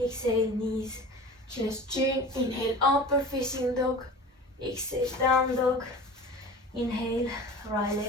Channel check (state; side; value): normal; both; correlation 0.38